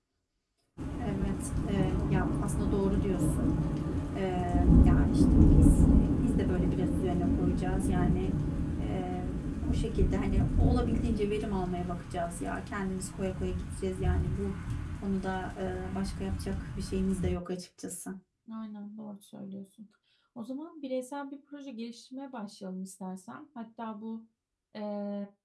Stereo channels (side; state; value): both; identical; correlation 1.00